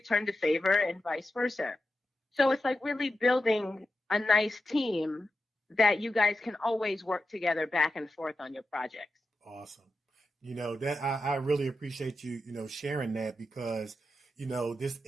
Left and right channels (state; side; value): normal; both; correlation 0.90